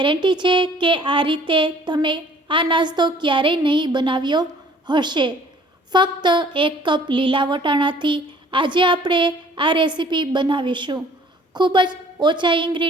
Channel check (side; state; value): both; normal; correlation 0.55